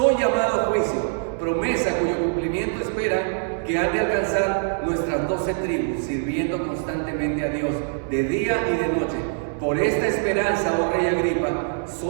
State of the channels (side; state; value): left; silent; 63 dB below the other